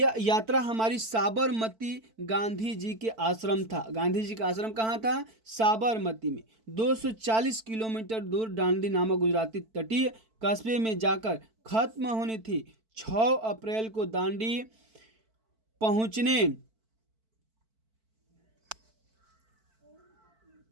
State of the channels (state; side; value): late; left; 4.5 ms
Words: यात्रा हमारी साबरमती गांधी जी के आश्रम था। गांधी जी का आश्रम कहाँ था? साबरमती में। 240 किलोमीटर दूर दांडी नामक गुजराती तटीय कस्बे में जाकर खत्म होनी थी। 6 अप्रैल को दांडी पहुंचने